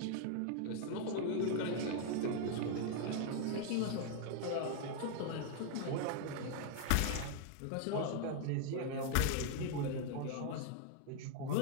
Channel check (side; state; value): both; different; correlation 0.00